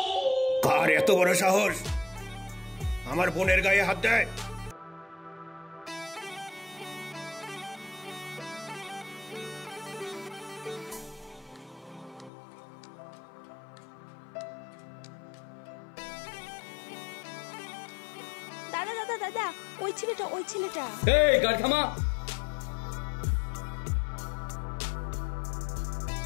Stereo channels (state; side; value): drops out; right; at 12.3 s